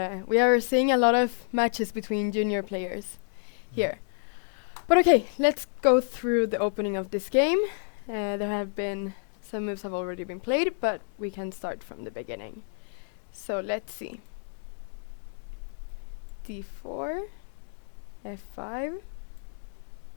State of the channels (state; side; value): silent; right; digital silence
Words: we are seeing a lot of matches between junior players here. But okay, let's go through the opening of this game. There have been some moves have already been played, but we can start from the beginning. So let's see. D4, F5.